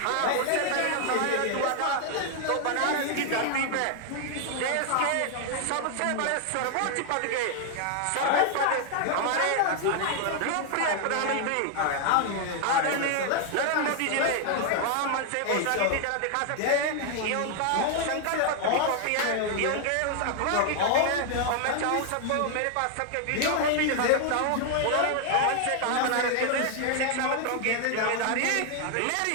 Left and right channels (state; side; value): different; both; correlation 0.00